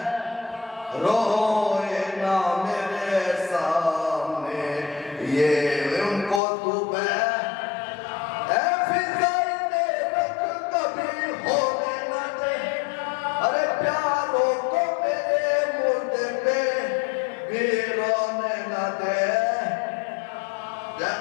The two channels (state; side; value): drops out; right; at 6.4 s